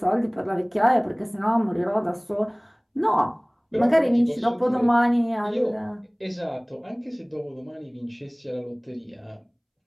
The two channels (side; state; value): both; identical; correlation 1.00